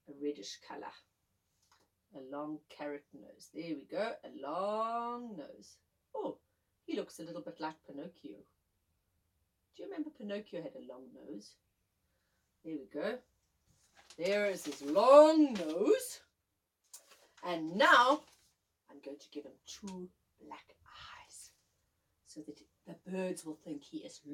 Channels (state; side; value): identical; both; correlation 1.00